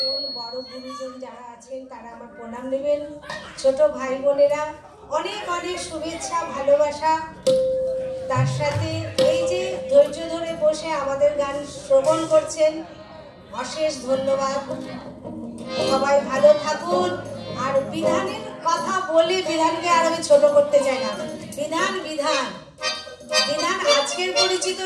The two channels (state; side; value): identical; both; correlation 1.00